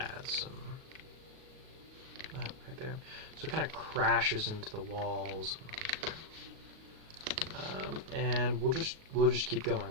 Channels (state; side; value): late; left; 38 ms